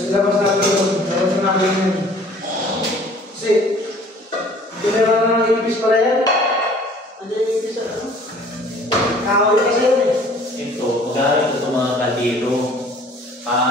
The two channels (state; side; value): normal; both; correlation 0.52